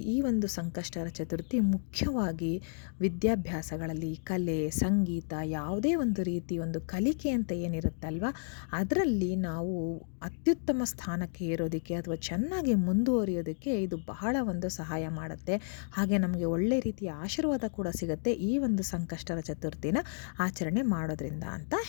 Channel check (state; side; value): silent; right; digital silence